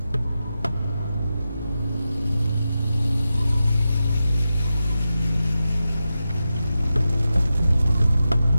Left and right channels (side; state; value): both; inverted; correlation -0.90